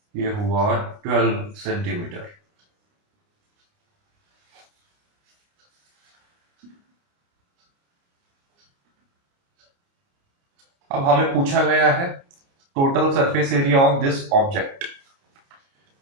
ये हुआ 12 सेंटीमीटर। अब हमें पूछा गया है total surface area of this object.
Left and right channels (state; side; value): late; left; 29 ms